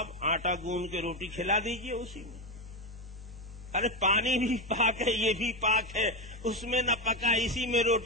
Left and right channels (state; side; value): normal; both; correlation 0.13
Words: آٹا گوندھ کے روٹی کھلا دیجئے اسی میں. ارے پانی بھی پاک ہے، یہ بھی پاک ہے، اس میں نہ پکا، اسی میں